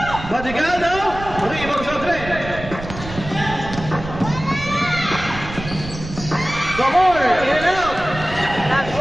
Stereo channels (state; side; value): noise; right; rumble, 11 dB below the sound